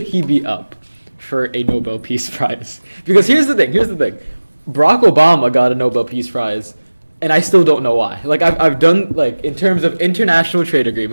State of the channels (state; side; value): inverted; both; correlation -1.00